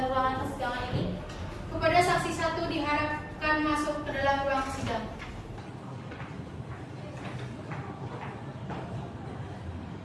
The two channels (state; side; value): identical; both; correlation 1.00